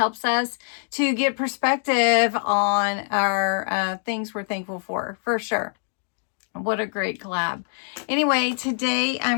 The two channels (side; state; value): right; silent; 59 dB below the other